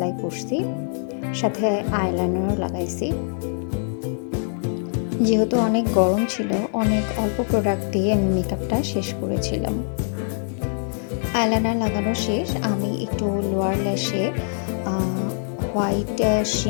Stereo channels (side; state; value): right; silent; digital silence